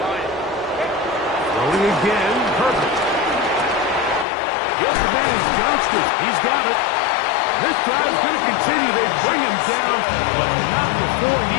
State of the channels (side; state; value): right; drops out; at 4.2 s